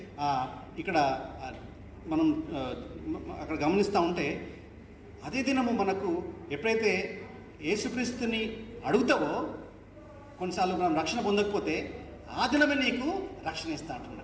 ఇక్కడ మనం అక్కడ గమనిస్తూ ఉంటే అదే దినము మనకు ఎప్పుడైతే యేసుక్రీస్తుని అడుగుతావో, కొన్నిసార్లు మనం రక్షణ పొందకపోతే ఆ దినమే నీకు రక్షణ ఇస్తా అంటున్నాడు.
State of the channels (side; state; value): both; identical; correlation 1.00